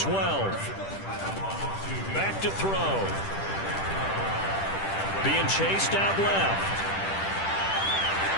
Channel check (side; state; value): right; late; 10 ms